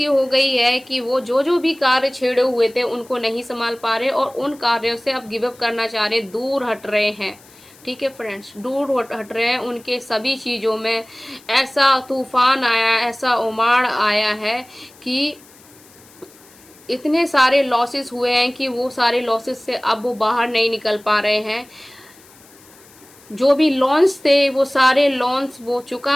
हो गई है कि वो जो भी कार्य छेड़े हुए थे उनको नहीं संभाल पा रहे और उन कार्यों से अब गिव अप करना चाह रहे, दूर हट रहे हैं, ठीक है फ्रेंड्स, दूर हट रहे हैं। उनके सभी चीज़ों में ऐसा तूफान आया, ऐसा उमाड़ आया है कि इतने सारे लॉसेस हुए हैं कि वो सारे लॉसेस से अब वो बाहर नहीं निकल पा रहे हैं। जो भी लोन्स थे वो सारे लोन्स वो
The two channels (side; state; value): left; noise; hiss, 25 dB below the sound